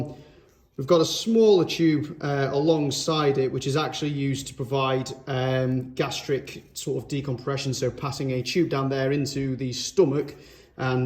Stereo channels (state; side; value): identical; both; correlation 1.00